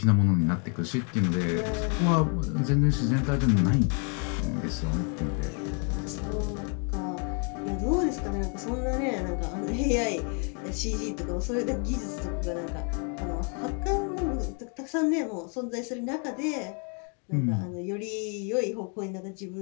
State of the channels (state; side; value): quieter; right; 39.6 dB